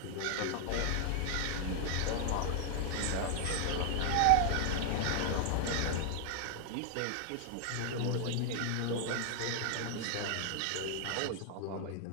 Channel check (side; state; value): both; different; correlation 0.00